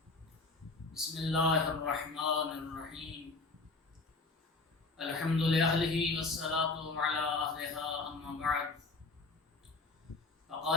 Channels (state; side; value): quieter; right; 3.6 dB